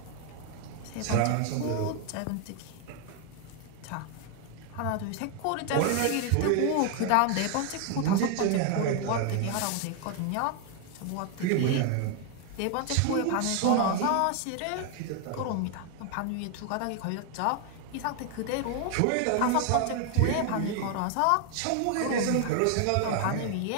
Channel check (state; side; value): different; both; correlation 0.01